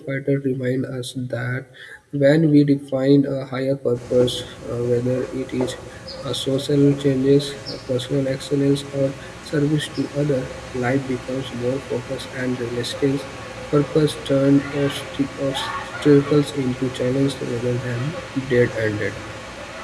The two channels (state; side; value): identical; both; correlation 1.00